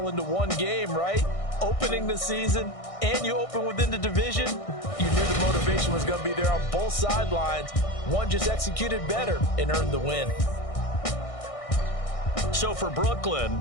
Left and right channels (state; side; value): late; right; 1.6 ms